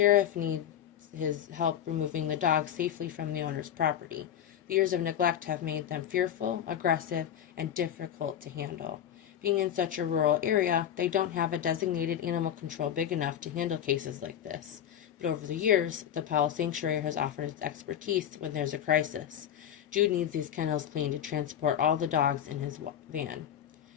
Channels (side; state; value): right; quieter; 9.8 dB